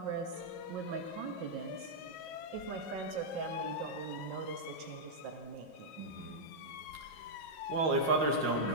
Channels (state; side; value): late; left; 5.6 ms